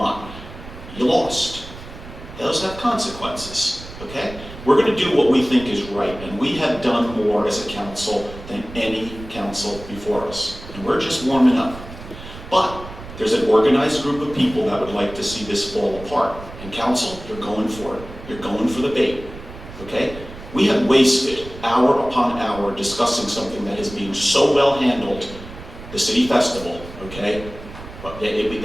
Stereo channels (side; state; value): right; noise; rumble, 14 dB below the sound